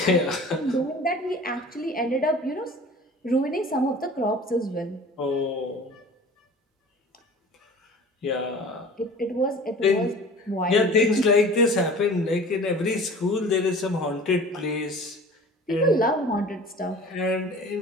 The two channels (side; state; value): both; normal; correlation 0.42